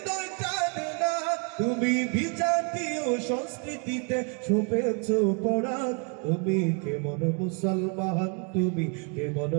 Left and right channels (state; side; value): quieter; left; 37.0 dB